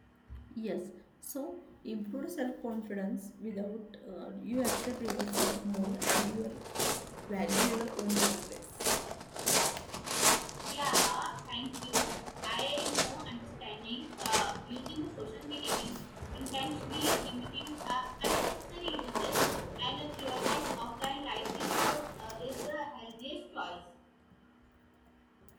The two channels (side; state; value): both; identical; correlation 1.00